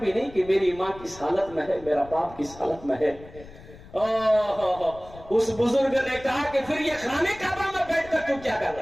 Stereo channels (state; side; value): noise; left; rumble, 19 dB below the sound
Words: नहीं कि मेरी माँ किस हालत में है, मेरा बाप किस हालत में है। उस बुजुर्ग ने कहा कि फिर ये खाने काबा में बैठकर तू क्या कर